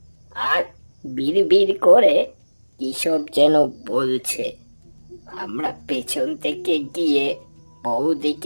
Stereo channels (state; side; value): inverted; both; correlation -1.00